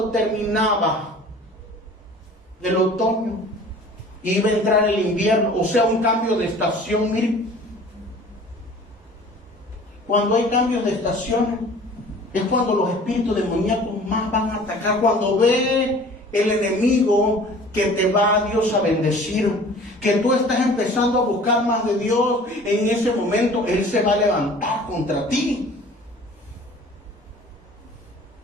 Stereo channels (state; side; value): normal; both; correlation 0.46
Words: terminaba el otoño. Iba a entrar el invierno, o sea, un cambio de estación. Mire, cuando hay cambios de estaciones, es cuando los espíritus demoníacos más van a atacar. Cuando ve el enemigo que te va a Dios a bendecir, que tú estás empezando a buscar más de Dios, en ese momento Él se va a levantar contra ti.